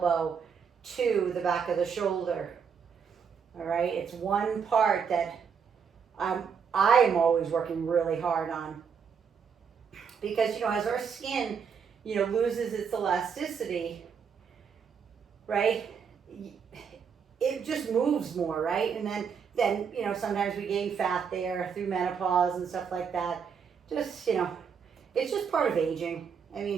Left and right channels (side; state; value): left; quieter; 6.7 dB